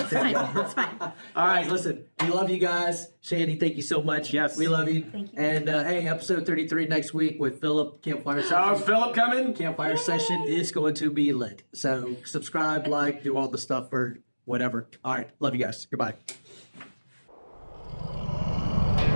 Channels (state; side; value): inverted; both; correlation -1.00